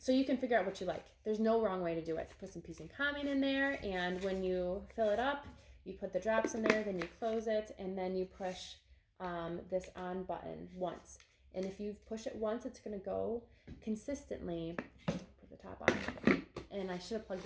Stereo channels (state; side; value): identical; both; correlation 1.00